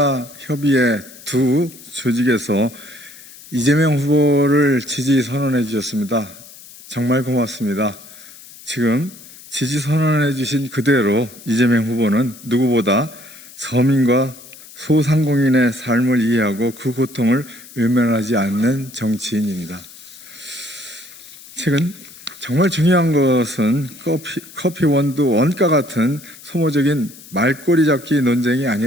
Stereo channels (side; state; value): left; noise; hiss, 19 dB below the sound